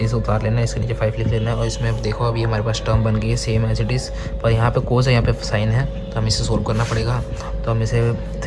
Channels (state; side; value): identical; both; correlation 1.00